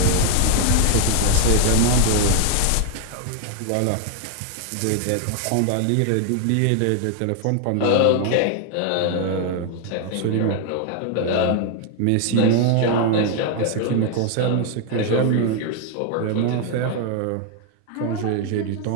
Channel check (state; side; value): different; both; correlation 0.00